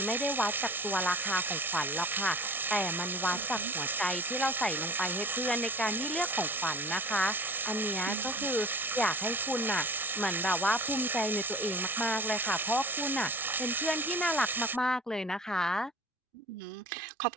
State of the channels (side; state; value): both; normal; correlation 0.41